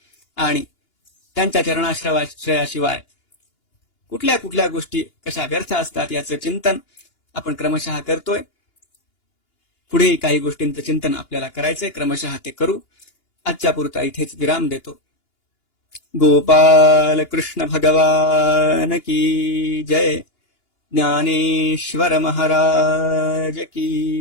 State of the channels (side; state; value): right; late; 2.9 ms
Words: आणि त्यांच्या चरणाश्रयाशिवाय कुठल्या कुठल्या गोष्टी कशा व्यर्थ असतात याचं चिंतन आपण क्रमशः करतोय. पुढेही काही गोष्टींचं चिंतन आपल्याला करायचंय, क्रमशः ते करू. आजच्या पुरता इथेच विराम देतो. गोपाल कृष्ण भगवान की जय. ज्ञानेश्वर महाराज